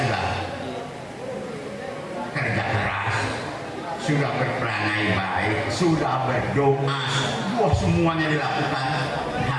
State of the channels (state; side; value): identical; both; correlation 1.00